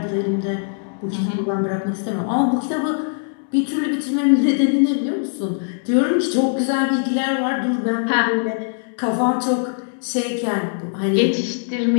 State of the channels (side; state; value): right; silent; digital silence